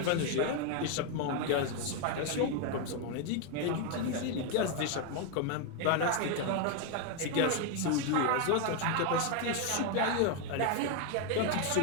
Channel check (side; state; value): both; different; correlation 0.01